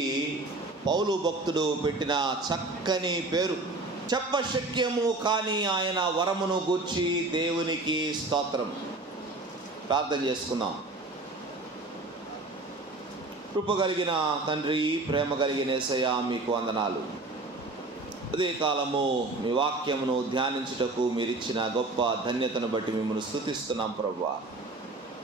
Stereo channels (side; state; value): left; quieter; 3.1 dB